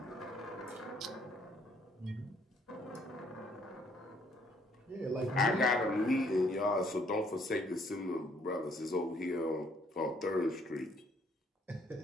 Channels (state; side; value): normal; both; correlation 0.66